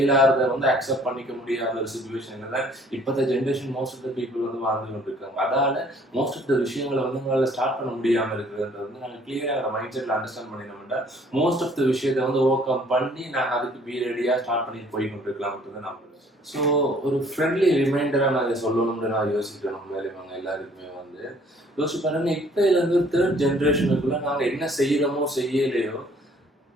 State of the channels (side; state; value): both; normal; correlation 0.58